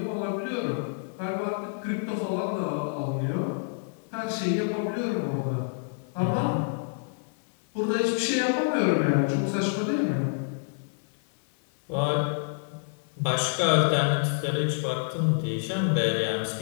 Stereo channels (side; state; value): right; silent; 60 dB below the other